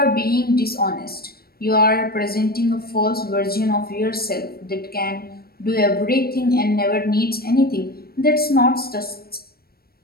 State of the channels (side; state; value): right; late; 0.44 ms